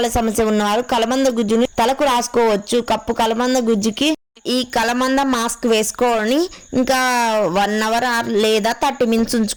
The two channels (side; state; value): both; identical; correlation 1.00